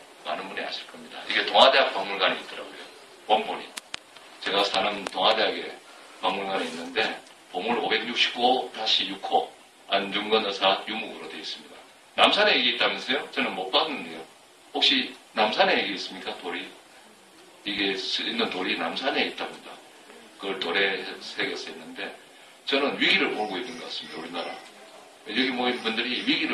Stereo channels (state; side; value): identical; both; correlation 1.00